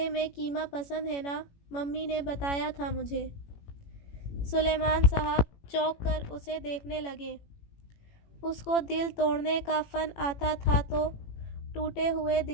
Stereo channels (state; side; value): late; right; 18 ms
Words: میں قیمہ پسند ہے نا؟ ممی نے بتایا تھا مجھے۔ سلیمان صاحب چونک کر اسے دیکھنے لگے۔ اس کو دل توڑنے کا فن آتا تھا تو ٹوٹے ہوئے